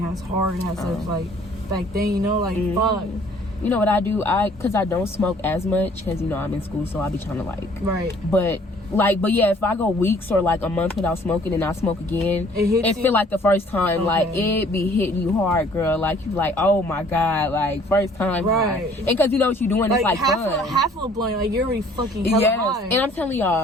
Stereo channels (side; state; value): both; normal; correlation 0.57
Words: as hard as of like back then. You know, like fuck. You know what I do? Cause I don't smoke as much, cause you know I'm in school, so I be trying to like. Right. But yeah, if I go weeks or like a month without smoking and I smoke again, It hits it you? feel like the first time. Okay. Like it be hitting you hard, girl. Like you like, oh my god, like first time. Right. High. And cause you know what you're doing, it's like fun. half of a blunt, like you're already fucking hella Yes, high. and I'm telling